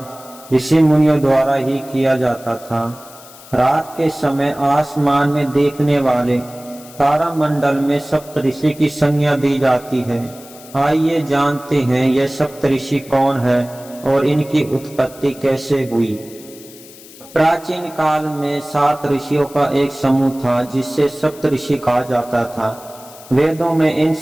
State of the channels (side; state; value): left; noise; hiss, 20 dB below the sound